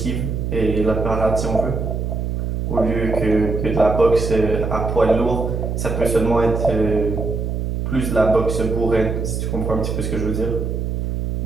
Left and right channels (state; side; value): noise; right; hum, 2 dB below the sound